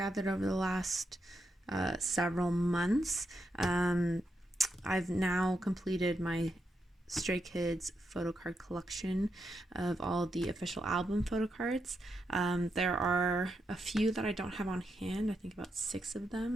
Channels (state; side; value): normal; both; correlation 0.83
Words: over the last several months. I've now completed my Stray Kids Photocard Collection of all the official album photo cards. There are a few that I don't have on hand, I think about 6 of